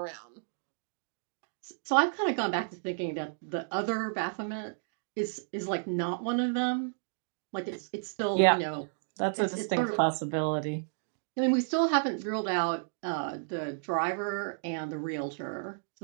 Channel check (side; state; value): left; silent; digital silence